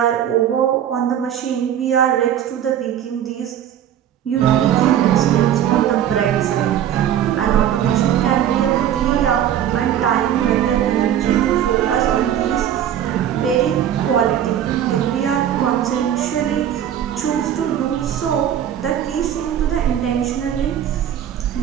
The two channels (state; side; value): quieter; left; 10.3 dB